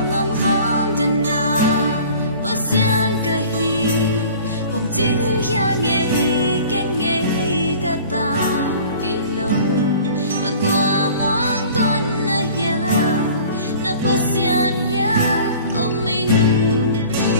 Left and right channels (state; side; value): inverted; both; correlation -0.46